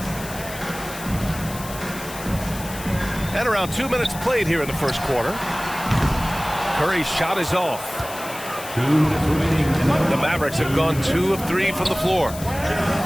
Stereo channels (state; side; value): noise; left; hiss, 13 dB below the sound